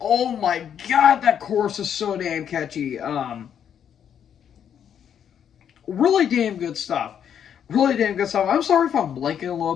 my God, that chorus is so damn catchy. Really damn good stuff. Really damn good stuff. I'm sorry if I'm blanking a little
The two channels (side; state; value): right; quieter; 8.7 dB